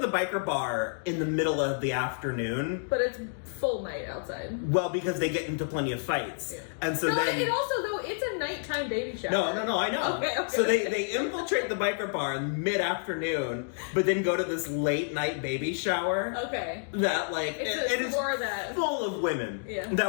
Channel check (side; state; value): right; silent; digital silence